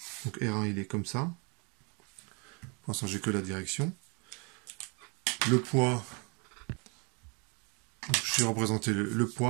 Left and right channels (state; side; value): quieter; left; 32.6 dB